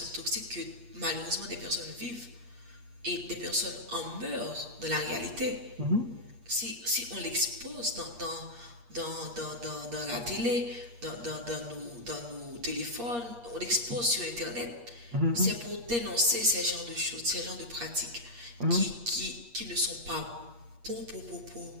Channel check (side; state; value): left; late; 8.5 ms